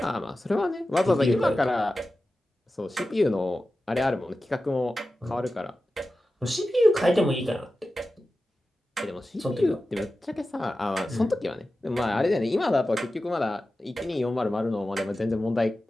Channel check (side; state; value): both; normal; correlation 0.94